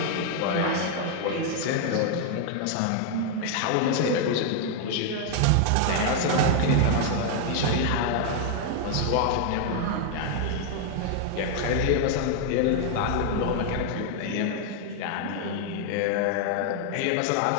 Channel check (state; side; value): different; both; correlation 0.00